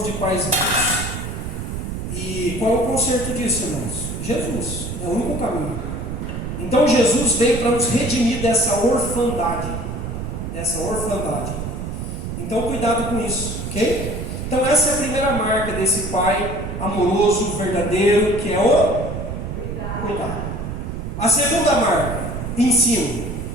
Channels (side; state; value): right; noise; rumble, 5 dB below the sound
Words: de pais vivos. E qual é o conserto disso, irmãos? Jesus, é o único caminho. Então Jesus veio para nos redimir dessa orfandade. Então cuidado com isso, ok? Então essa é a primeira marca desse pai amoroso, verdadeiro, que é o cuidado. A segunda marca, ensino.